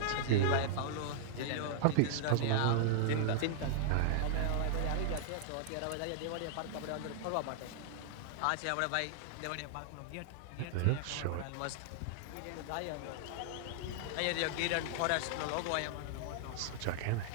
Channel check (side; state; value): both; different; correlation -0.01